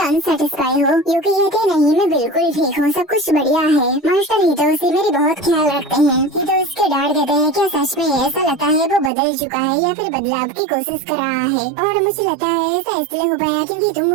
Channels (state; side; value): drops out; left; at 9.1 s